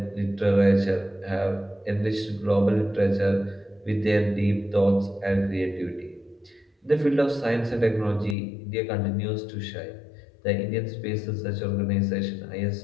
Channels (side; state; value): right; drops out; at 8.3 s